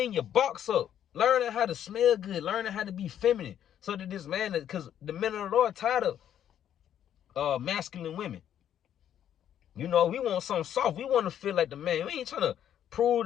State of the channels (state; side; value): quieter; right; 10.2 dB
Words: your box up, learning how to smell good, learning how to be feminine, so that this man, because the men of the Lord tired of masculine women. You know, we want something soft. We want to feel like the man. We ain't trying to